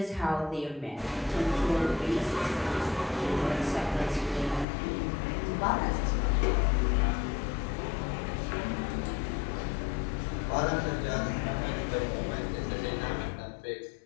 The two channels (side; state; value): right; drops out; at 4.7 s